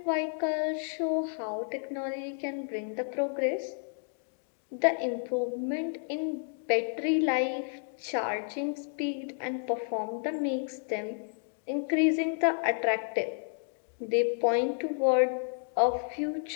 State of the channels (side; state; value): right; silent; 57 dB below the other